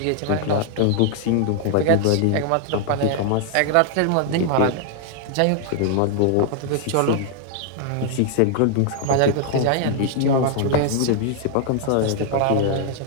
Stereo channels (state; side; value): different; both; correlation 0.00